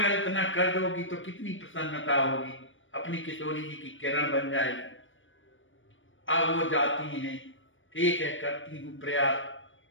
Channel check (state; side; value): late; right; 0.56 ms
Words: इतना कर दोगी तो कितनी प्रसन्नता होगी, अपनी किशोरी जी की किरण बन जाएगी। अब वो जाती हैं, ठीक है करती हूँ प्रयास।